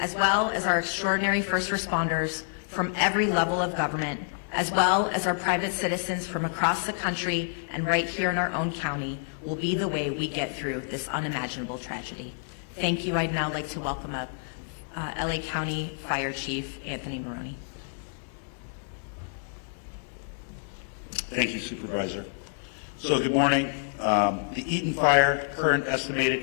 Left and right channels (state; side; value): silent; right; digital silence